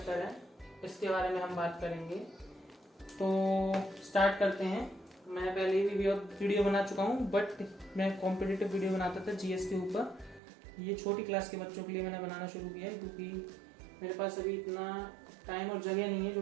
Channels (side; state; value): left; drops out; at 10.4 s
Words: है, इसके बारे में हम बात करेंगे। तो स्टार्ट करते हैं। मैं पहले भी वीडियो बना चुका हूँ, बट मैं कॉम्पिटिटिव वीडियो बनाता था जीएस के ऊपर। ये छोटी क्लास के बच्चों के लिए मैंने बनाना शुरू किया है, क्योंकि मेरे पास अभी इतना टाइम और जगह नहीं है जो